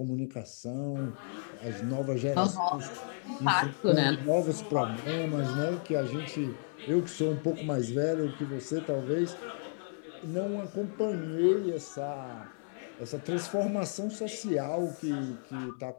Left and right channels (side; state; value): right; silent; digital silence